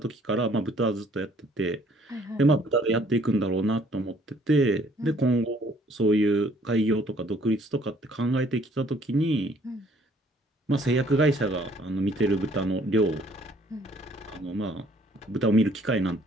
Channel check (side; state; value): both; normal; correlation 0.61